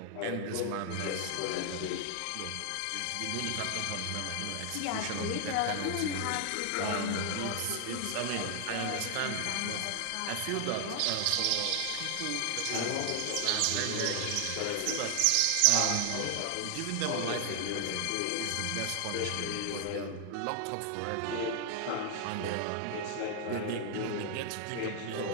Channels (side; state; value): both; different; correlation 0.00